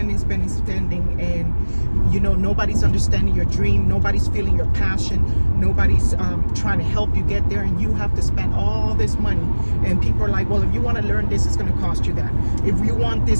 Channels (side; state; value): both; inverted; correlation -1.00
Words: and nobody's understanding your dream, nobody's feeling your passion, nobody's trying to help you get there, and you have to spend all this money. And people are like, well, if you want to learn this, it's going to cost you that. If you want